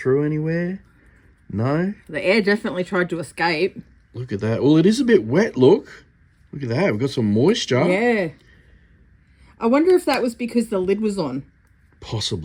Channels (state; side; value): identical; both; correlation 1.00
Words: anywhere? No? The air definitely tried to escape. Look at that. Well, it is a bit wet, look. Look at that. We've got some moisture. Yeah. I wonder if that was because the lid was on.